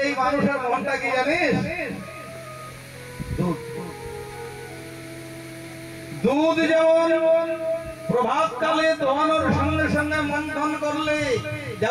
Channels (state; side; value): identical; both; correlation 1.00